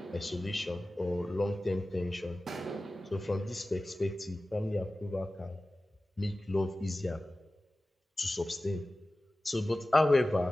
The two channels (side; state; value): both; normal; correlation 0.96